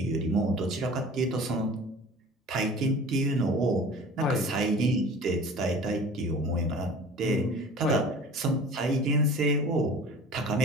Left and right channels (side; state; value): both; normal; correlation 0.42